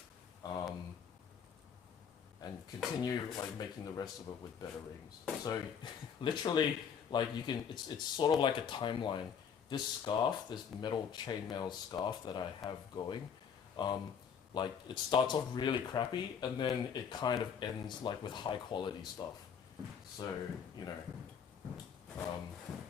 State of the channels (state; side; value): quieter; right; 7.3 dB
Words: and continue like making the rest of it with better rings. So literally, like you can, it's sort of like a timeline. This scarf, this metal chainmail scarf that I have going, like it starts off really crappy and then it kind of ends like with high quality stuff. So you know,